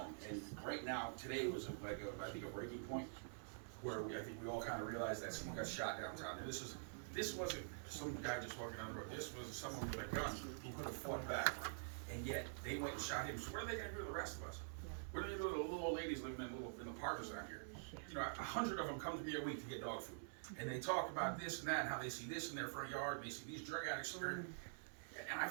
And right now, today was I think a breaking point, where I think we all kinda realized that someone got shot downtown. And this wasn't some guy just walking down the road. This was someone with a gun who could have fought back. And yet, they went and shot him. So what are they gonna do to the rest of us? What are they gonna do to the little old ladies living in the parks down here? 100 of them come to me a week to get dog food. And they talk about this and that, and how they see this in their front yard, and they see these drug addicts here. And I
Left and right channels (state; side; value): silent; left; digital silence